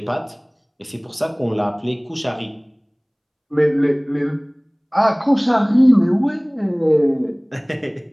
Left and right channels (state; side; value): identical; both; correlation 1.00